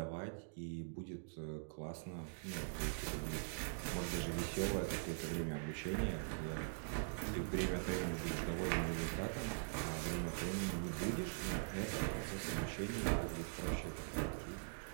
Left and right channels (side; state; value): left; silent; digital silence